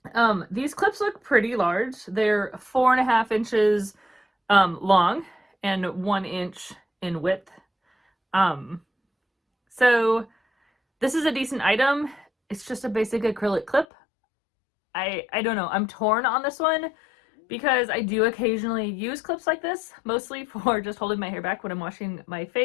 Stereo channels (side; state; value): right; drops out; at 13.9 s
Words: These clips look pretty large. They're 4.5 inches long and 1 inch in width. So this is a decent item. It's just a basic acrylic clip. I don't know. I'm torn on this one, because I do occasionally use clips like this, mostly for just holding my hair back when I'm washing my